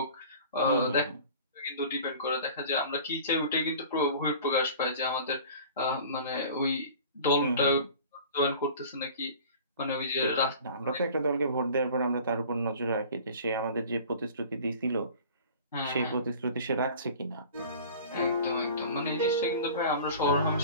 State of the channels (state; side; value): inverted; both; correlation -0.43